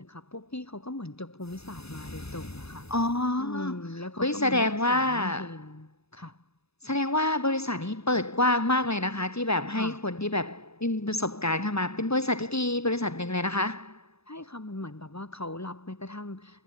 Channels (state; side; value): late; right; 0.79 ms